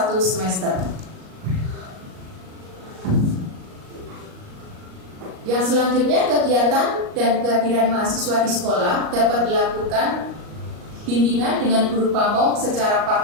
semester. Yang selanjutnya, kegiatan dan kehadiran mahasiswa di sekolah dapat dilakukan bimbingan dengan guru pamong secara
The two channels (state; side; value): late; left; 38 ms